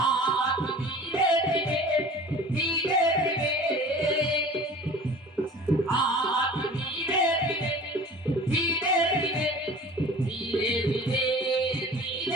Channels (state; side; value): normal; both; correlation 0.42